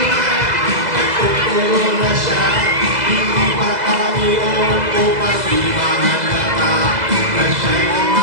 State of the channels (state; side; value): late; left; 2.0 ms